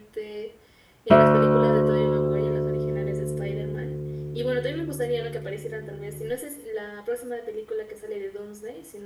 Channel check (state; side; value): identical; both; correlation 1.00